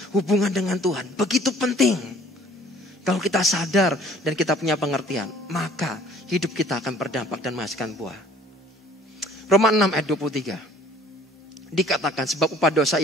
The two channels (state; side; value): normal; both; correlation 0.54